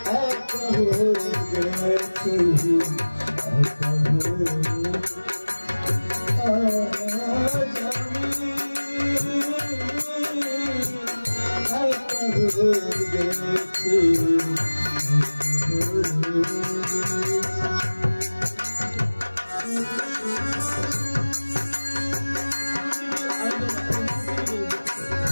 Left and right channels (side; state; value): both; inverted; correlation -1.00